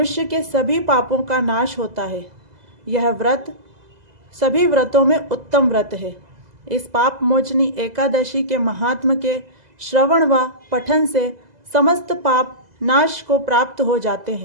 के सभी पापों का नाश होता है। यह व्रत सभी व्रतों में उत्तम व्रत है। इस पाप मोचनी एकादशी के महात्म के श्रवण व पठन से समस्त पाप नाश को प्राप्त हो जाते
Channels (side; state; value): left; late; 2.0 ms